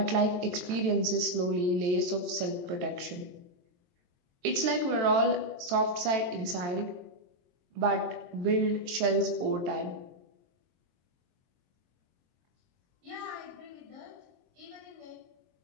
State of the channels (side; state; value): left; late; 22 ms